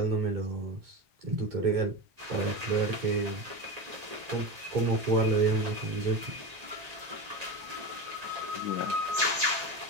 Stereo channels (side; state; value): left; late; 1.9 ms